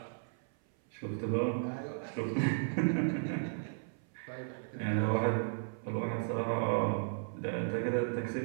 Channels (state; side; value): silent; left; 54 dB below the other